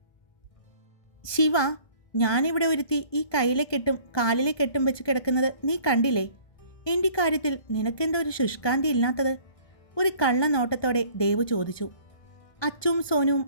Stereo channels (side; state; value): right; late; 1.2 ms